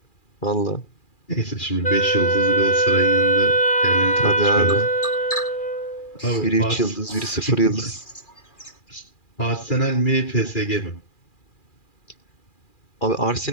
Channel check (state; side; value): late; right; 2.4 ms